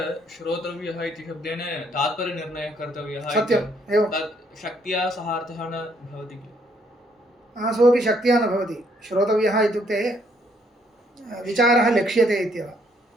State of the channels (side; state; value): both; normal; correlation 0.68